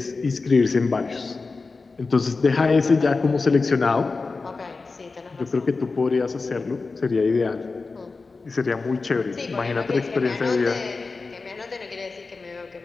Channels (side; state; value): right; quieter; 4.0 dB